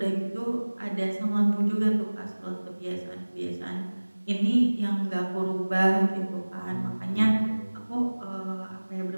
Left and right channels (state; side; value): inverted; both; correlation -1.00